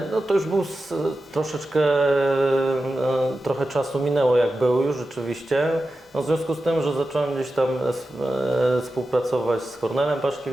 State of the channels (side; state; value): both; normal; correlation 0.92